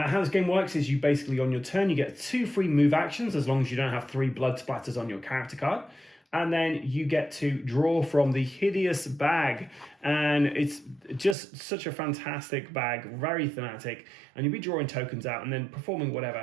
this game works is you basically, on your turn, you get 2 free move actions as long as you don't have 3 blood splatters on your character card. And then you get to draw from the hideous bag. And it's just such a fantastic bag, very thematic. And you'll be drawing tokens out and then performing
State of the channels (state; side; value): drops out; left; at 11.4 s